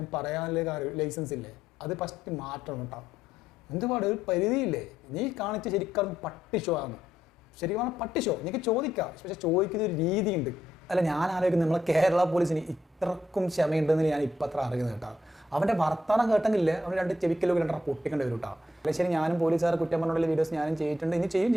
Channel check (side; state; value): both; normal; correlation 0.76